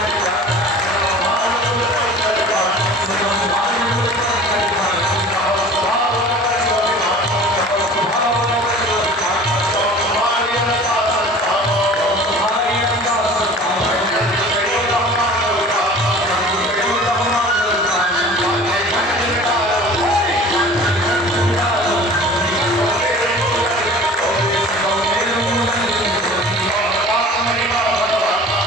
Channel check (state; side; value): normal; both; correlation 0.43